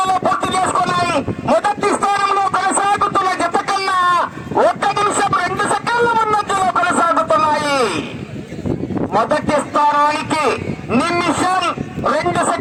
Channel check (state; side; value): identical; both; correlation 1.00